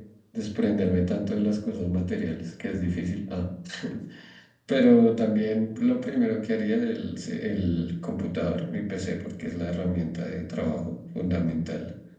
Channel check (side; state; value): both; identical; correlation 1.00